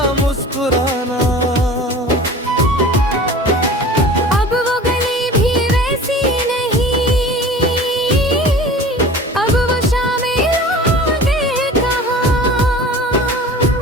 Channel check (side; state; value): both; normal; correlation 0.40